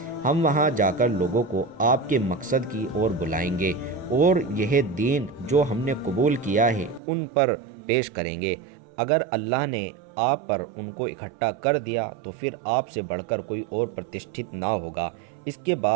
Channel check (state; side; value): drops out; left; at 7.0 s